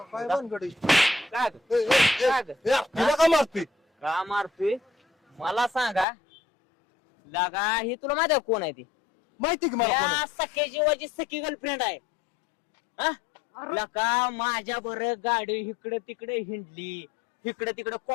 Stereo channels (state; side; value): drops out; right; at 6.1 s